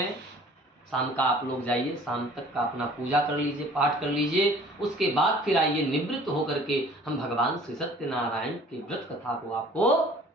शाम का आप लोग जाइए, शाम तक का अपना पूजा कर लीजिए, पाठ कर लीजिए। उसके बाद फिर आइए, निवृत्त होकर के हम भगवान श्री सत्यनारायण की व्रत कथा को आपको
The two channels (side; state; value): both; normal; correlation 0.51